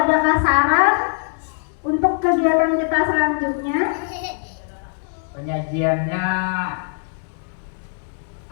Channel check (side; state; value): right; silent; digital silence